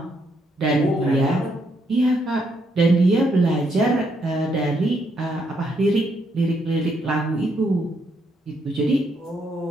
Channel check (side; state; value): both; normal; correlation 0.75